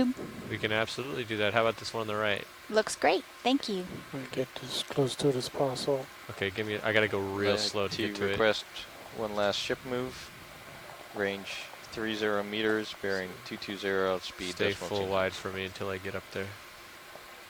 We can absolutely do that. How about this one on the right? looks great. Thank you. We'll get as close to it as possible. Okay, give me. I gotta go real slow to get to it. Request one last ship move. Range 30 meters, bearing 220, speed Stay decimal full 2. wide for me until I get up there.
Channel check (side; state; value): both; identical; correlation 1.00